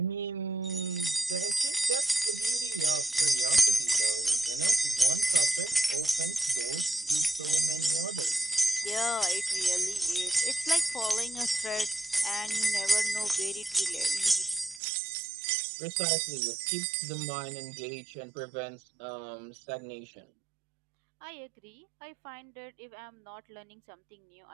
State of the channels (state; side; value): drops out; left; at 14.8 s